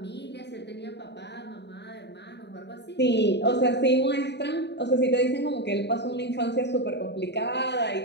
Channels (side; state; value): right; late; 0.50 ms